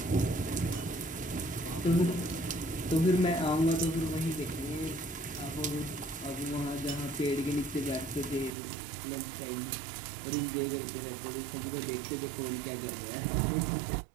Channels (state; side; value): drops out; left; at 8.5 s